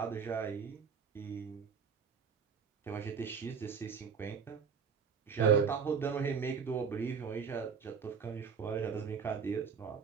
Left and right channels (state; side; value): quieter; left; 6.2 dB